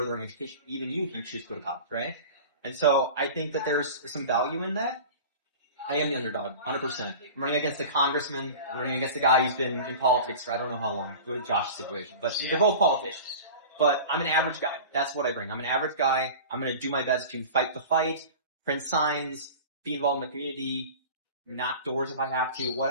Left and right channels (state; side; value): inverted; both; correlation -0.36